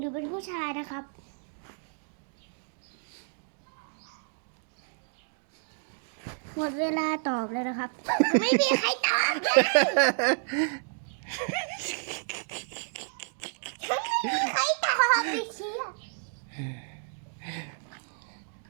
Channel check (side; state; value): left; silent; digital silence